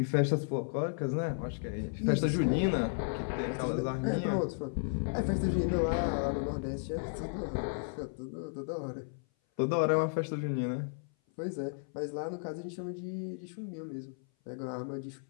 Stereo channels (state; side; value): silent; right; 55 dB below the other